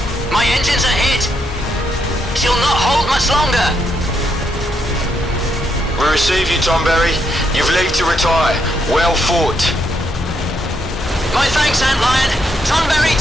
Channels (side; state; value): both; normal; correlation 0.77